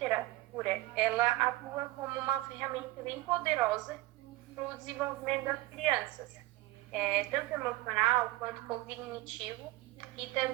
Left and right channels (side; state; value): left; quieter; 18.6 dB